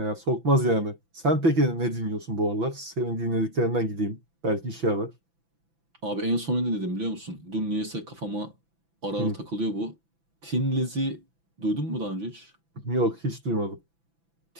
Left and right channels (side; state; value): left; late; 6.0 ms